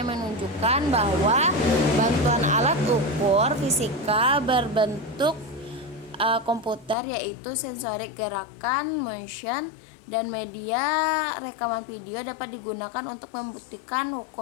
menunjukkan bahwa bantuan alat ukur fisika berbentuk komputer, yaitu sensorik gerakan motion, dan media rekaman video dapat digunakan untuk membuktikan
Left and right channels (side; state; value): right; drops out; at 7.0 s